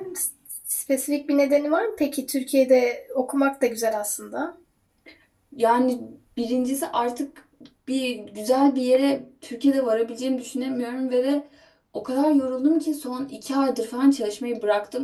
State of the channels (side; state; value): both; identical; correlation 1.00